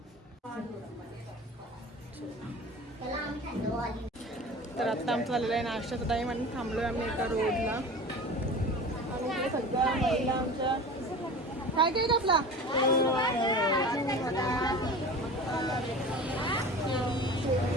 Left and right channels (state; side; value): normal; both; correlation 0.36